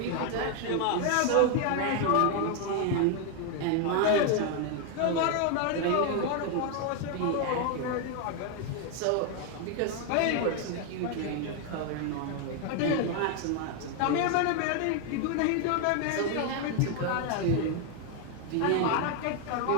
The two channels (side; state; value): both; different; correlation 0.01